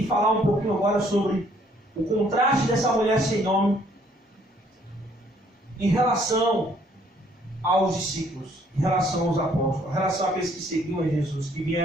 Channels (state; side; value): normal; both; correlation 0.64